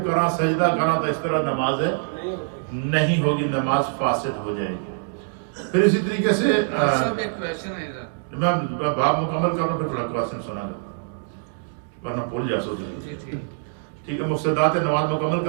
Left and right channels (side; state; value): left; silent; digital silence